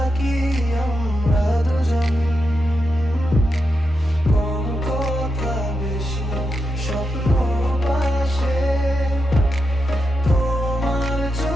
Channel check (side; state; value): both; normal; correlation 0.86